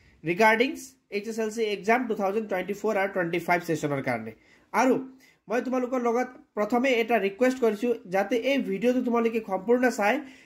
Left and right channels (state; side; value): identical; both; correlation 1.00